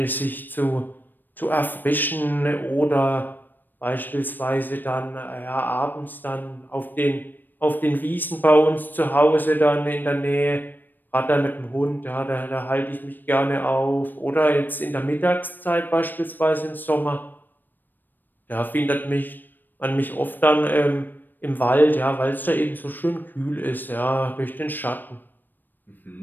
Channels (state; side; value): late; right; 0.091 ms